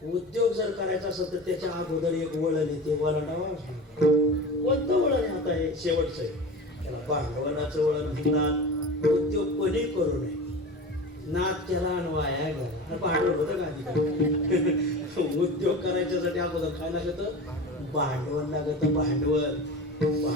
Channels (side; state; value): both; normal; correlation 0.32